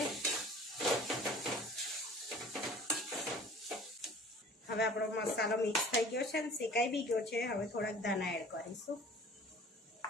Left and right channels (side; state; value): both; normal; correlation 0.47